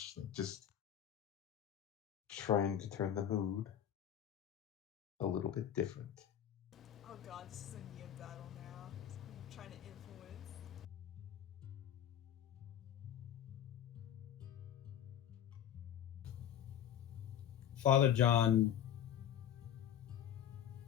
like just trying to turn the mood a little bit different. Oh god, this is a Nia battle now. I'm trying to influence. Father John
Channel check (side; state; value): right; quieter; 10.2 dB